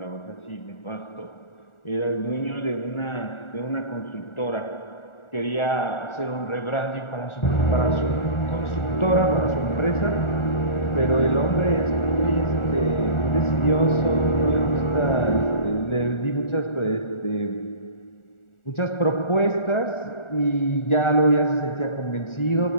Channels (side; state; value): right; late; 1.4 ms